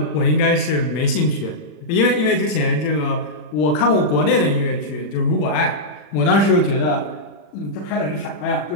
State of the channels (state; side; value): late; right; 40 ms